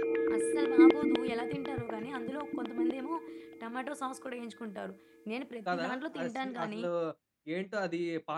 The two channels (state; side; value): identical; both; correlation 1.00